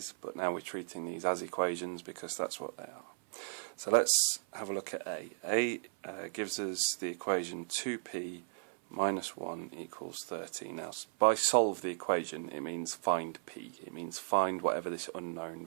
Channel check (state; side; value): silent; left; 54 dB below the other